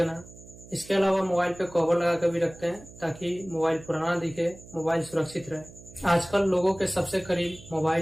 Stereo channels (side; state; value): right; noise; hum, 19 dB below the sound